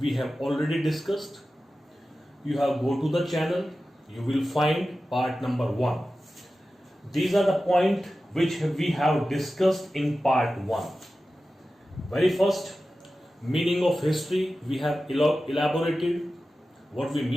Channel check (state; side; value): normal; both; correlation 0.94